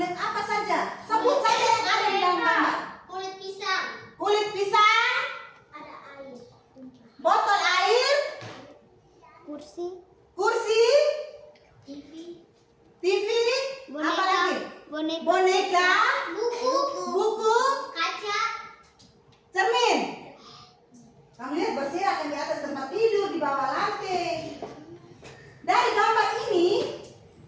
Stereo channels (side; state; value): both; identical; correlation 1.00